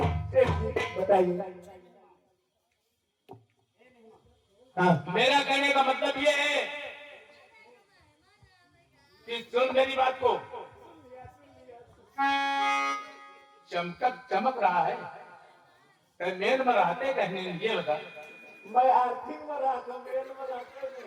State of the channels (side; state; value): both; identical; correlation 1.00